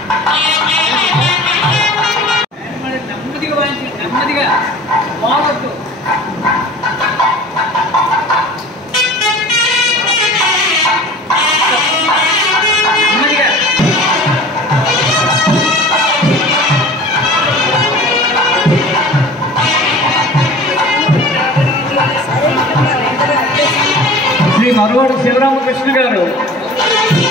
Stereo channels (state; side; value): normal; both; correlation 0.42